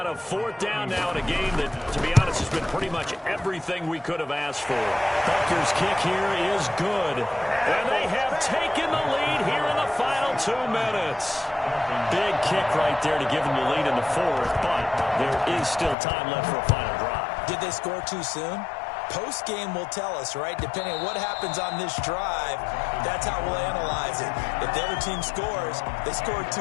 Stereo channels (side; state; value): right; drops out; at 16.0 s